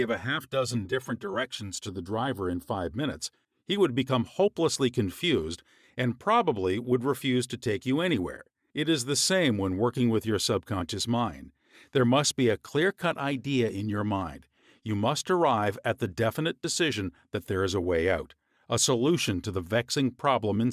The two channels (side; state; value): both; identical; correlation 1.00